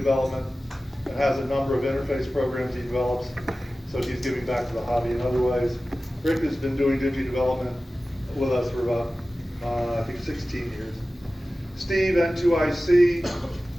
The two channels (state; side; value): normal; both; correlation 0.96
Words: and has a number of interface programs he develops, so he's giving back to the hobby in other ways. Rick has been doing Digi development with us for about, I think 16 years. Steve, N2IC,